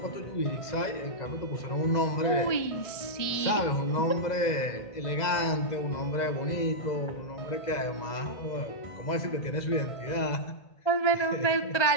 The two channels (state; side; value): late; right; 2.0 ms